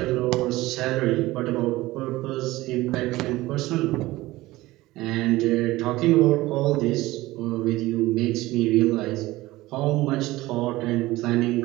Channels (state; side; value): quieter; left; 18.4 dB